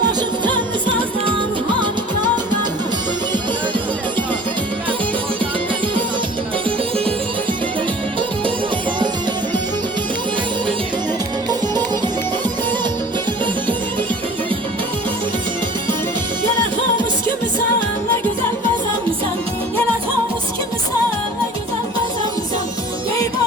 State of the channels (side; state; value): both; normal; correlation 0.45